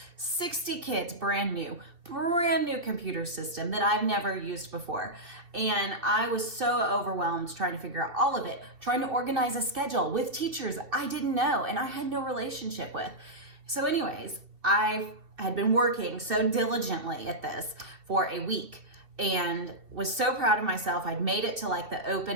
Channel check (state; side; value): late; left; 2.6 ms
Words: 60 kids, brand new computer system that I've never used before. And I was so overwhelmed trying to figure out all of it, trying to organize a schedule with teachers I didn't know and I had no relationship with. So anyways, I had been working so diligently at this for a week and was so proud of myself. I'd made it to like the